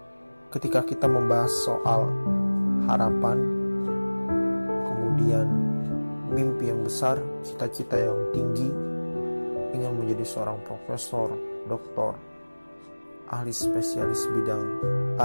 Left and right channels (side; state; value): both; inverted; correlation -1.00